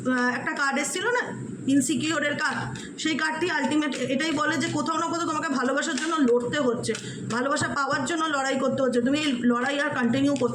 একটা কার্ড এসেছিল না, ইনসিকিওরের কার্ড, সেই কার্ডটি আলটিমেট এটাই বলে যে কোথাও না কোথাও তোমাকে ভালোবাসার জন্য লড়তে হচ্ছে, ভালোবাসা পাওয়ার জন্য লড়াই করতে হচ্ছে। তুমি এই লড়াই আর কন্টিনিউ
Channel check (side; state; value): both; identical; correlation 1.00